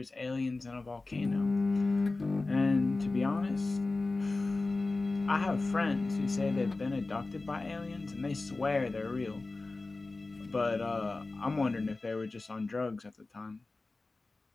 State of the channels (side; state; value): right; quieter; 3.4 dB